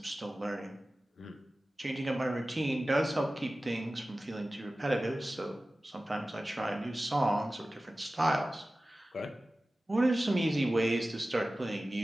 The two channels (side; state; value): both; normal; correlation 0.96